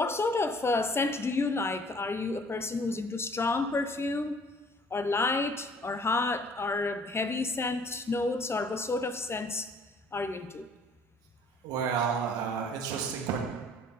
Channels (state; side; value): normal; both; correlation 0.55